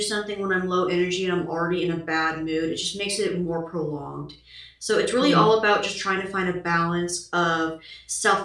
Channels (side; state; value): both; identical; correlation 1.00